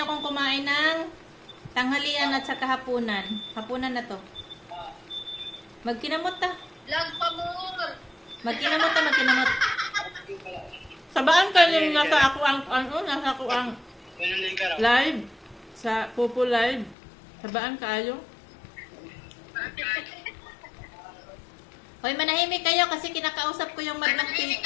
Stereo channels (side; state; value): right; drops out; at 16.9 s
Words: akong kumain ng tanghalian at saka hapunan. Hapunan na to. Magkinamot ta. Vlog pa more. Magkinamot ta, magkinamot. Sabaan ka yung nasa ako ang live. Sa Pupo Live. Sabaan kayo. Hoy, manahimik kayo kasi kinakausap ko yung madlang